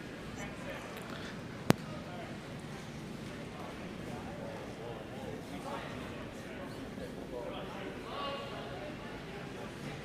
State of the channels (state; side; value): identical; both; correlation 1.00